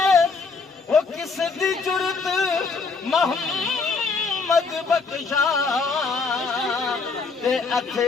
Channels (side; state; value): right; quieter; 4.5 dB